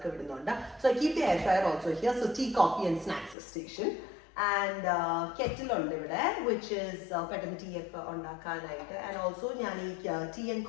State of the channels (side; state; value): right; drops out; at 3.4 s